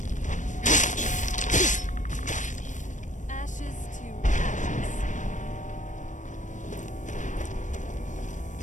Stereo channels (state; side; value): late; right; 0.36 ms